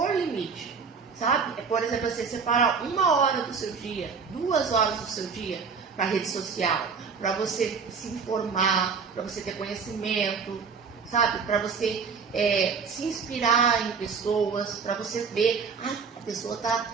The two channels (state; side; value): quieter; left; 5.7 dB